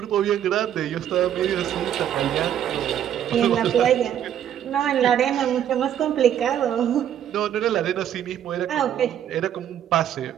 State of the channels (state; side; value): quieter; left; 10.2 dB